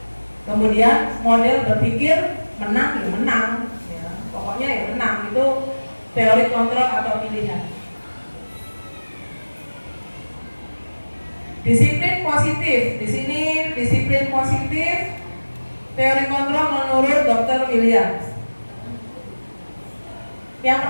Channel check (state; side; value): inverted; both; correlation -1.00